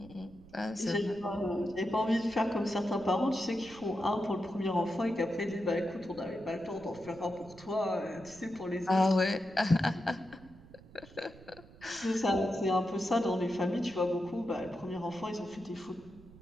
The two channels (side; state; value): right; noise; rumble, 21 dB below the sound